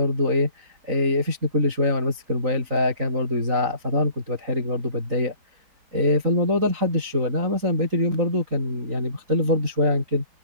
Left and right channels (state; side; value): late; left; 3.9 ms